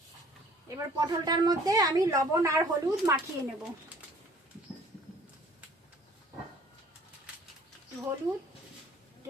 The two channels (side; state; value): both; normal; correlation 0.54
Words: এবার পটলটার মধ্যে আমি লবণ আর হলুদ মাখিয়ে নেব। হলুদ